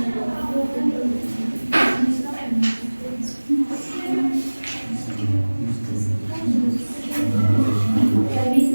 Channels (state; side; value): inverted; both; correlation -1.00